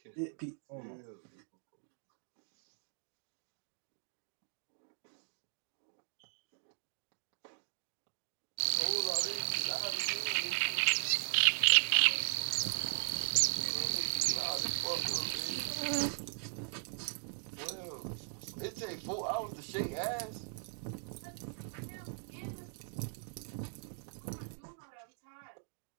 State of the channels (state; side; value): silent; left; 52 dB below the other